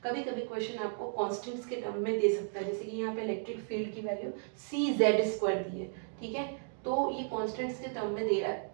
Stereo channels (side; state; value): left; silent; digital silence